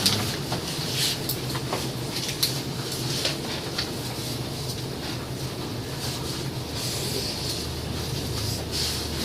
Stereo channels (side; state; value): both; identical; correlation 1.00